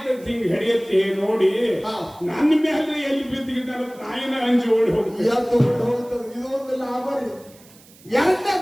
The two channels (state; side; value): noise; right; hiss, 25 dB below the sound